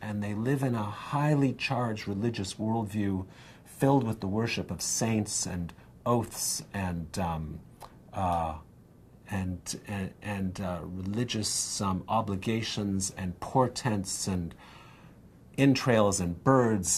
and they live in a highly charged religious worldview filled with the worship of saints and oaths and religious obligations and portents and entrails and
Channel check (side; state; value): both; identical; correlation 1.00